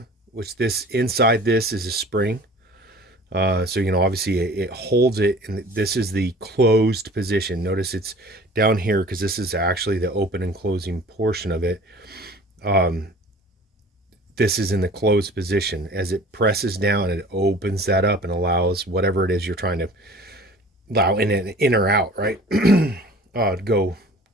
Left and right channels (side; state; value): both; normal; correlation 0.46